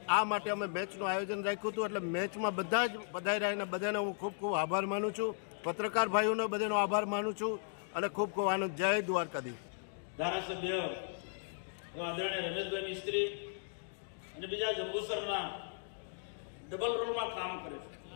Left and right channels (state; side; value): silent; right; digital silence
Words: આ માટે અમે મેચનું આયોજન રાખ્યું હતું। એટલે મેચમાં બધા જ પધાર્યા અને બધાને હું ખૂબ ખૂબ આભાર માનું છું, પત્રકાર ભાઈઓનો બધાનો આભાર માનું છું અને ખૂબ ખૂબ આનંદ। જય દ્વારકાધીશ। ધારાસભ્ય આદરણીય રમેશભાઈ મિસ્ત્રી અને બીજા જંબુસરના ડબલ રોલમાં કામ કરે છે,